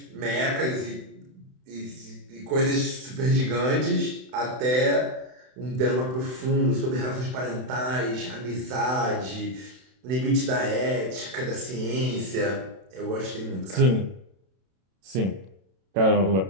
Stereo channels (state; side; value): late; left; 32 ms